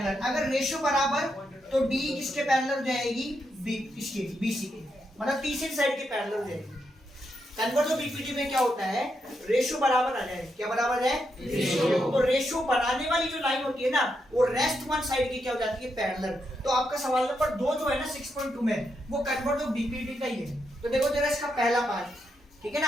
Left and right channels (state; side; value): normal; both; correlation 0.82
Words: अगर रेशियो बराबर तो डी किसके पैरेलल हो जाएगी, बी इसके, बीसी के, मतलब तीसरी साइड के पैरेलल हो जाएगी। कन्वर्ट ऑफ बीपीटी में क्या होता है, रेशियो बराबर आ जाए, क्या बराबर है, रेशियो। तो रेशियो बनाने वाली जो लाइन होती है ना, वो रेस्ट वन साइड की क्या हो जाती है, पैरेलल। तो आपका सवाल नंबर 2 जो है ना 6.2 में, वो कन्वर्ट ऑफ बीपीटी का ही है। तो देखो जरा इसका पहला पार्ट, ठीक है